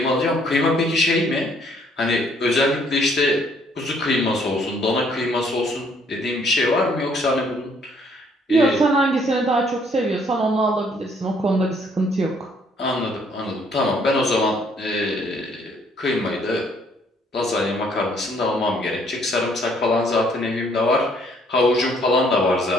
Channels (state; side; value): normal; both; correlation 0.64